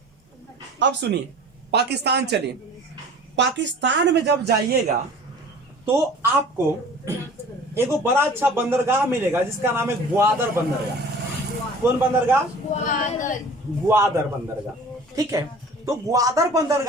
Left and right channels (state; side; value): normal; both; correlation 0.44